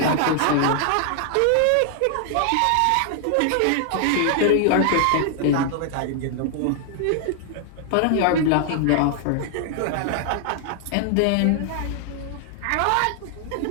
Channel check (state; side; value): different; both; correlation 0.00